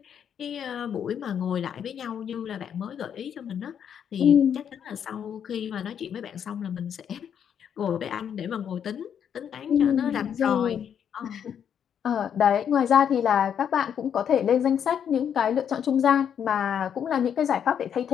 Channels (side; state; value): right; quieter; 8.4 dB